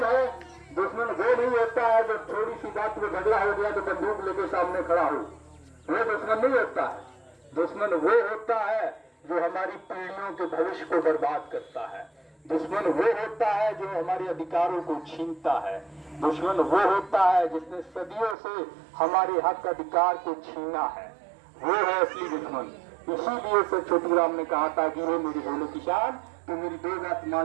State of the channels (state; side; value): drops out; left; at 18.4 s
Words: है? दुश्मन वो नहीं होता है जब थोड़ी सी बात में झगड़ा हो गया तो बंदूक लेके सामने खड़ा हो, वो दुश्मन नहीं होता है। दुश्मन वो होता है जो हमारी पीढ़ियों के भविष्य को बर्बाद करता है। दुश्मन वो होता है जो हमारे अधिकारों को छीनता है। दुश्मन वो होता है जिसने सदियों से हमारे हक अधिकार को छीना है, वो है असली दुश्मन। इसीलिए सर छोटू राम ने कहा था कि वो मेरी भोले किसान, तो मेरी दो बात